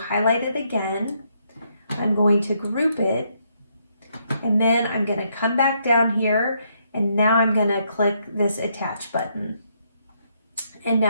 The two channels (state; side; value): inverted; both; correlation -0.74